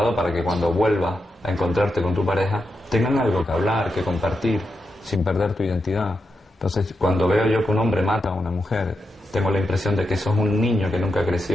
para que cuando vuelvas a encontrarte con tu pareja tengan algo que hablar, que compartir, sin perder tu identidad. Entonces, cuando veo yo que un hombre mata a una mujer, tengo la impresión de que eso es un niño que nunca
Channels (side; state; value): both; normal; correlation 0.86